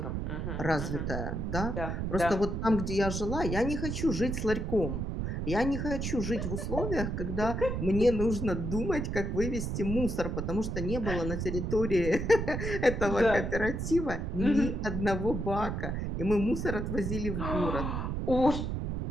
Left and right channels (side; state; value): right; noise; rumble, 2 dB below the sound